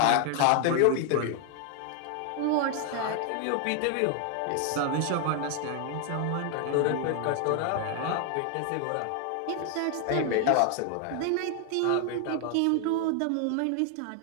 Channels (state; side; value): different; both; correlation 0.00